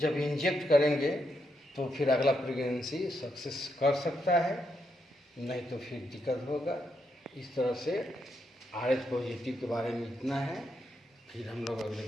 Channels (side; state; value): both; normal; correlation 0.80